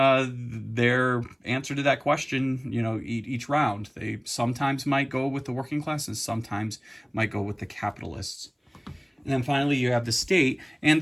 answer to that question, each round. They sometimes might go with the working class and sometimes might go with the capitalists. And then finally, you have the state, and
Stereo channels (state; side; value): identical; both; correlation 1.00